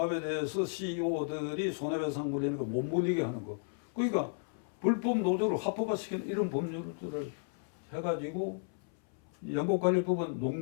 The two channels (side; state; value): right; silent; 55 dB below the other